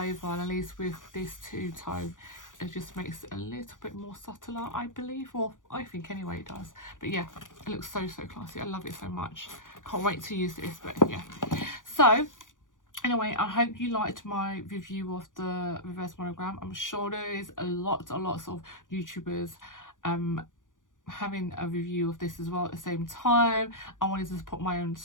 and at least with this two-tone, it just makes it a little bit more subtler, I believe, or I think anyway it does. But yeah, it looks so classy. I love it so much. Can't wait to use this. But yeah, so anyway, I hope you liked my review of the reverse monogram. I'm sure there is lots of YouTubers having a review of this as well at the same time. I wanted to put my own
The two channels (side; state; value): right; late; 0.88 ms